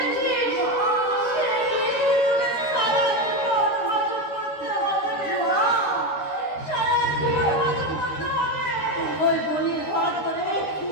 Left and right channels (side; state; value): right; late; 13 ms